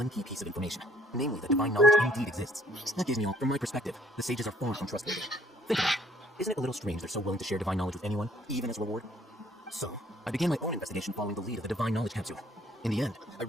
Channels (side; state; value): both; normal; correlation 0.62